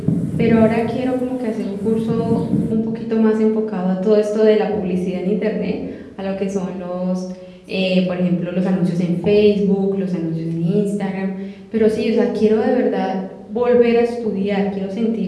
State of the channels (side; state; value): both; identical; correlation 1.00